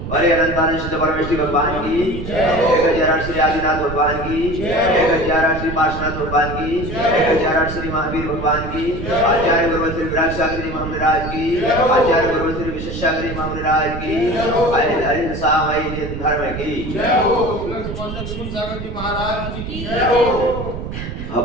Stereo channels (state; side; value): noise; right; rumble, 7 dB below the sound